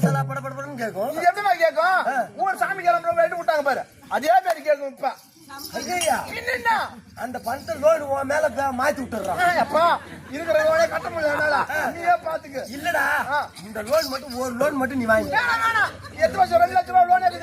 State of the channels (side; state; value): both; identical; correlation 1.00